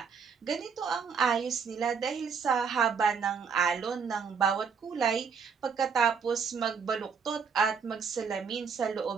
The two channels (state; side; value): quieter; left; 6.1 dB